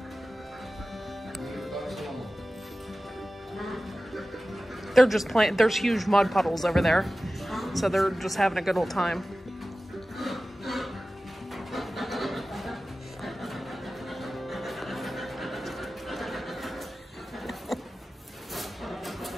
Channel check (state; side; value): normal; both; correlation 0.95